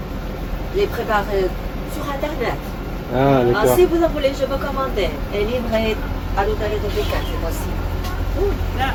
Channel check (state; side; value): identical; both; correlation 1.00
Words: Les préparer sur internet. Ah d'accord. Si vous en voulez, je peux commander et livrer à l'hôtel de Pékin, c'est possible.